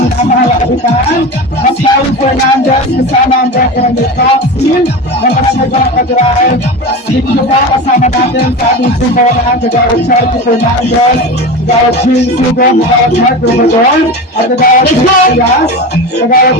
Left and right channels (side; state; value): both; normal; correlation 0.26